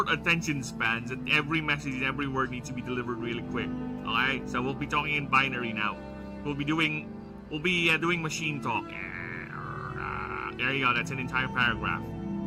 attention spans that every message, every word needs to be delivered really quick. Alright, so we'll be talking in binary now. We'll be doing machine talk. There you go, that's an entire paragraph.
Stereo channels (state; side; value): identical; both; correlation 1.00